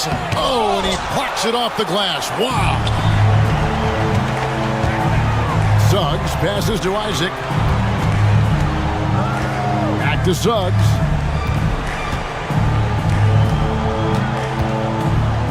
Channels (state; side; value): identical; both; correlation 1.00